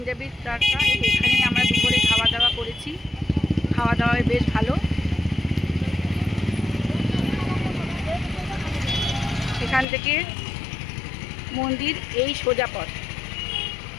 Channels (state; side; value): drops out; right; at 9.9 s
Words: তড়কা, এখানেই আমরা দুপুরে খাওয়া দাওয়া করেছি। খাওয়া দাওয়ায় বেশ ভালো। এখান থেকে মন্দির এই সোজা পথ।